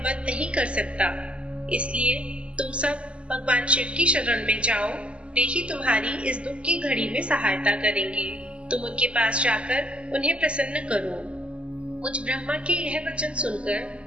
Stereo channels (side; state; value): left; late; 0.057 ms